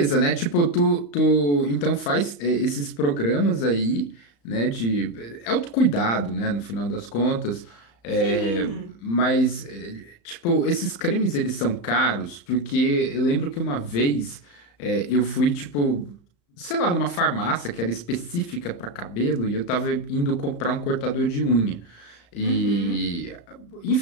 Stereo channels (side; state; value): right; late; 35 ms